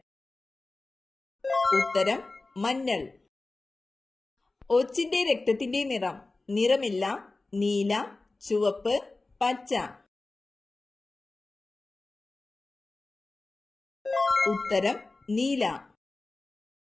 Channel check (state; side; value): quieter; right; 3.3 dB